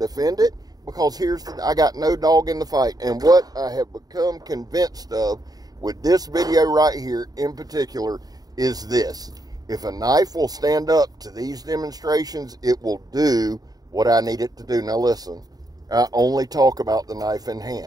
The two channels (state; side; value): late; left; 0.18 ms